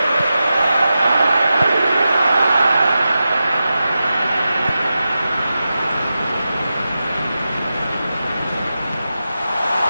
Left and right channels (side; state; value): both; inverted; correlation -0.91